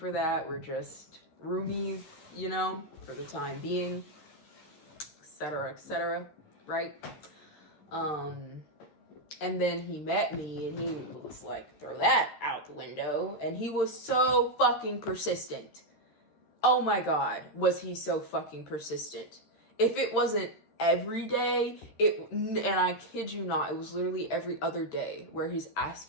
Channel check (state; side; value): late; right; 13 ms